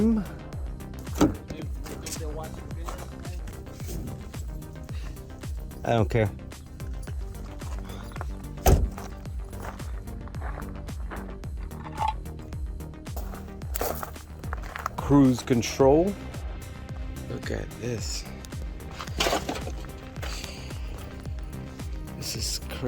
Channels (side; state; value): both; identical; correlation 1.00